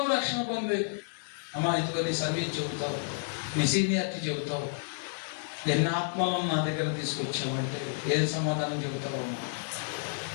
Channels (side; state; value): right; silent; 57 dB below the other